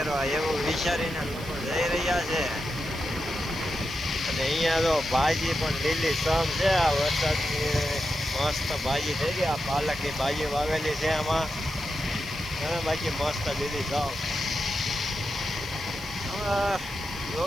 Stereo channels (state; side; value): noise; right; hiss, 18 dB below the sound